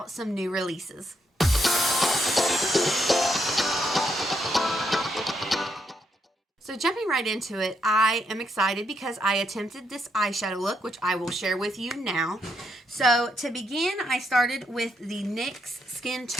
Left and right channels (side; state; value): both; normal; correlation 0.78